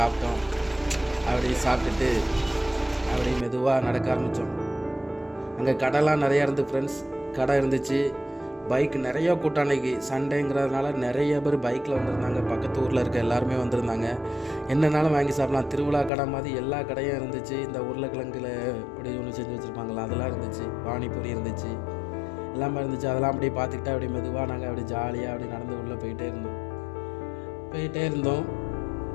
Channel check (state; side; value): drops out; right; at 16.1 s